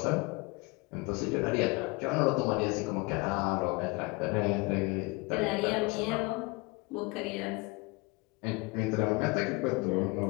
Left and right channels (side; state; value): right; quieter; 26.7 dB